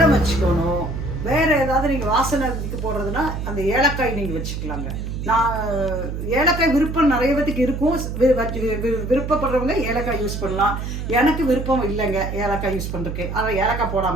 வச்சுக்கணும். வேறு ஏதாவது நீங்கள் வாசனைக்கு போடுறதுன்னா அந்த ஏலக்காய் நீங்கள் வச்சுக்கலாங்க. நான் ஏலக்காய் விருப்பம் நிறைய பேத்துக்கு இருக்கும், விருப்பப்படுறவங்க ஏலக்காய் யூஸ் பண்ணலாம். எனக்கு விருப்பம் இல்லைங்க ஏலக்காய் யூஸ் பண்ணுறதுக்கு, ஆனால் ஏலக்காய்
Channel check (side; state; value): right; noise; hum, 5 dB below the sound